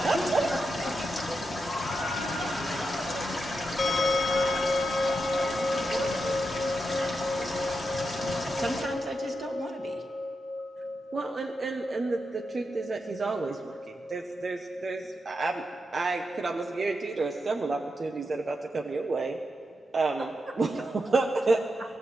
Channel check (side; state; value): both; normal; correlation 0.87